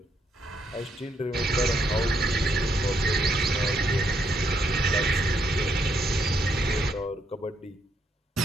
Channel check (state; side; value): normal; both; correlation 0.75